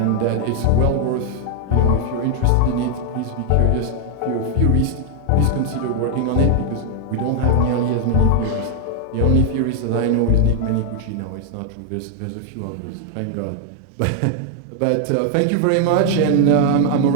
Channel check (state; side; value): different; both; correlation 0.00